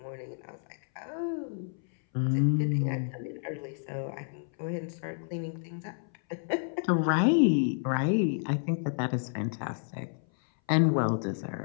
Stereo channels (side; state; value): right; silent; 58 dB below the other